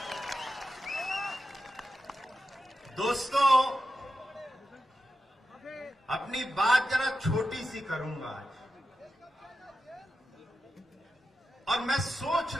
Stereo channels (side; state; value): both; normal; correlation 0.90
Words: दोस्तों, अपनी बात जरा छोटी सी करूंगा आज, और मैं सोच